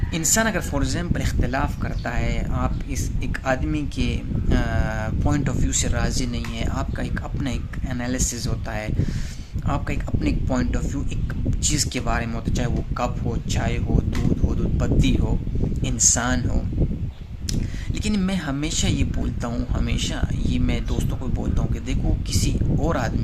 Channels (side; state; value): both; identical; correlation 1.00